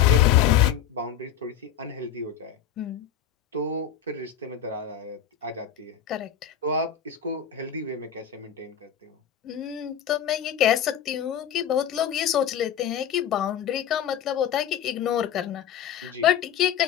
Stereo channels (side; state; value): right; quieter; 9.3 dB